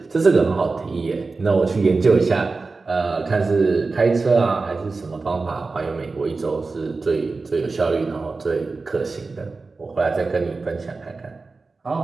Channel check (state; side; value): quieter; left; 3.9 dB